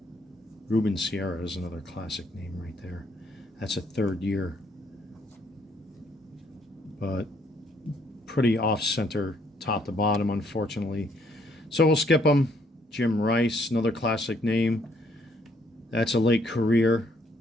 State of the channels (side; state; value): both; normal; correlation 0.68